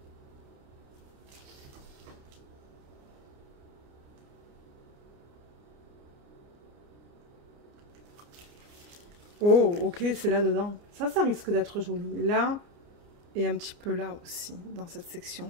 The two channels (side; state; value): left; late; 29 ms